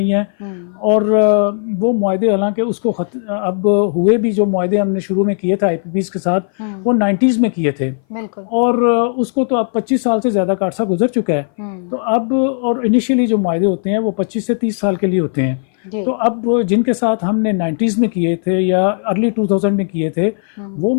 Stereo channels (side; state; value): right; silent; 59 dB below the other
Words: हैं और वो मुआहदे हालांकि उसको अब हुए भी, जो मुआहदे हमने शुरू में किए थे IPPs के साथ वो 90s में किए थे और उसको तो अब 25 साल से ज़्यादा का अर्सा गुजर चुका है। तो अब और इनिशियली जो मुआहदे होते हैं वो 25 से 30 साल के लिए होते हैं। तो अब जिनके साथ हमने 90s में किए थे या अर्ली 2000 में किए थे वो